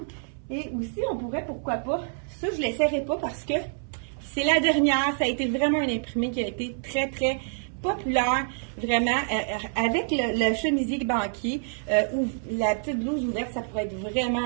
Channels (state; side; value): silent; left; 60 dB below the other